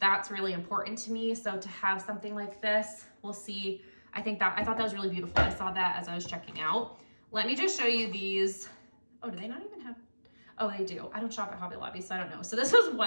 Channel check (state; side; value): inverted; both; correlation -1.00